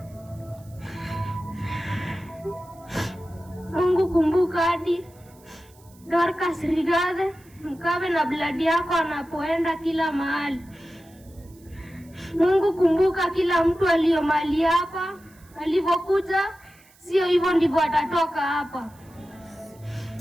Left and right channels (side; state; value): right; noise; hiss, 28 dB below the sound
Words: Mungu, kumbuka hadi Dorcas Rigathi, mkawe na bladi yako anapoenda kila mahali. Mungu, kumbuka kila mtu aliyo mahali hapa, alivyokuja sio hivyo ndivyo atatoka hapa.